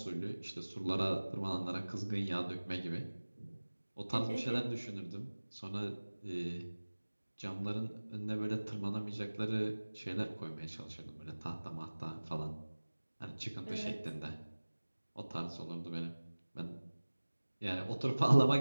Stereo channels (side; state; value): both; inverted; correlation -1.00